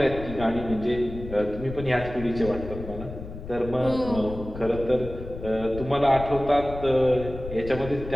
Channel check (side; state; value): left; noise; rumble, 11 dB below the sound